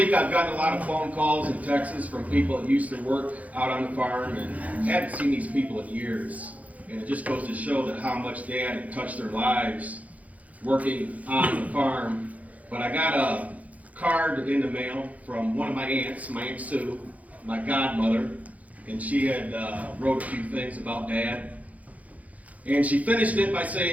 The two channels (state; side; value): late; left; 0.071 ms